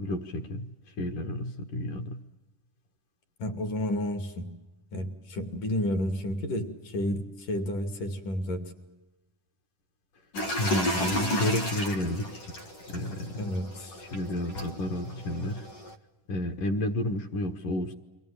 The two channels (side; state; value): right; late; 10 ms